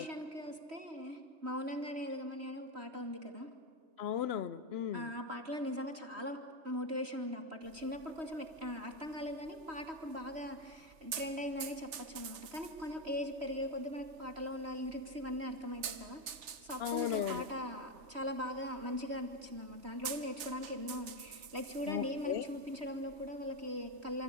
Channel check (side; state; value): left; late; 3.4 ms